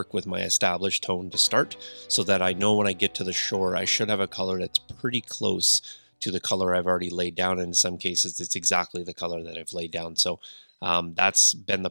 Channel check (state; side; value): inverted; both; correlation -1.00